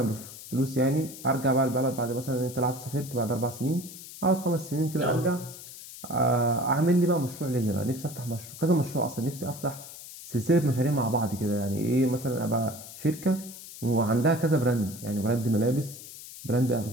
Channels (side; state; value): left; noise; hiss, 14 dB below the sound